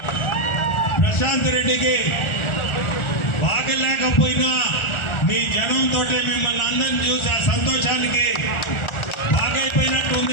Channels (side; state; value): right; late; 1.4 ms